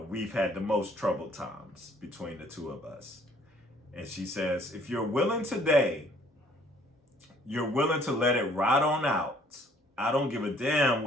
had the most troubled times between the two of us. And she says, if you're willing today, you're willing to let it ride on out. I don't give a damn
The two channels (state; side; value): normal; both; correlation 0.59